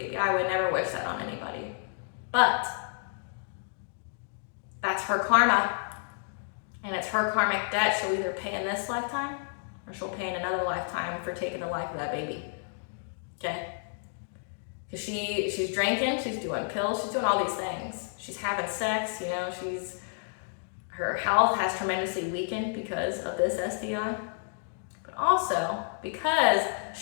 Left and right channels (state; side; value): silent; right; digital silence